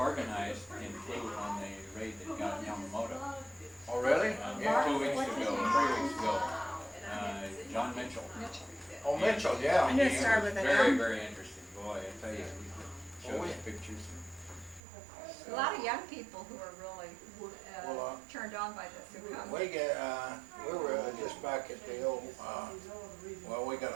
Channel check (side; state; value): left; drops out; at 14.8 s